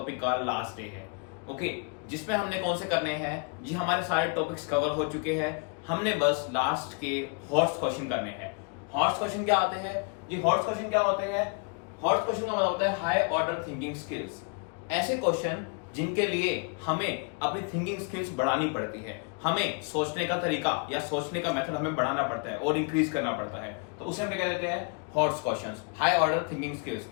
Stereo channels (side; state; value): right; quieter; 36.4 dB